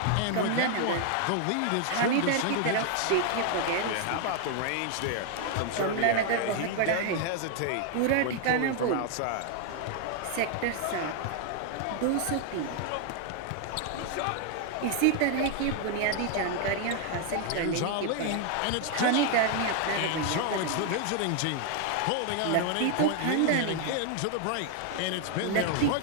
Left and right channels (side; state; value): both; different; correlation 0.00